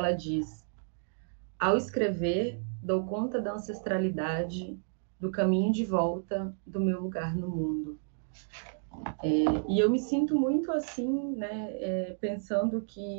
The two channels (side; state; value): left; silent; digital silence